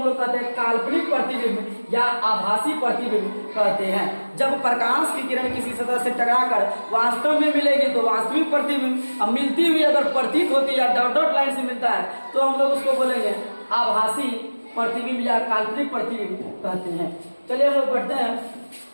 लोग कहते हैं काल्पनिक प्रतिबिंब या आभासी प्रतिबिंब कहते हैं। जब प्रकाश की किरण किसी सतह से टकराकर वास्तव में मिलेगी तो वास्तविक प्रतिबिंब, अब मिलती हुई अगर प्रतीत होती है डॉट डॉट लाइन से मिलता है, तो हम लोग उसको बोलेंगे आभासी प्रतिबिंब या काल्पनिक प्रतिबिंब कहते हैं। चलिए हम लोग बढ़ते हैं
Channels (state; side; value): inverted; both; correlation -1.00